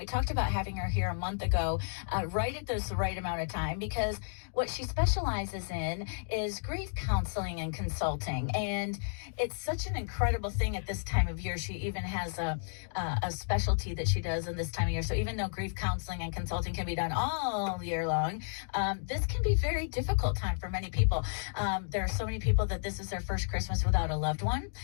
talked about having her here a month ago, right at this right amount of time, because what she specializes in is grief counseling and consulting, and it's such an incredible thing at this time of year. She even has a specialty that she does in this time of year. So even though grief counseling and consulting can be done all year long, this can be very difficult time for many people. There are so many people that this is their first Christmas without a loved one,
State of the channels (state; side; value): silent; right; digital silence